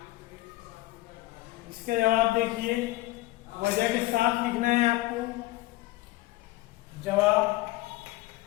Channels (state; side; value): quieter; right; 18.4 dB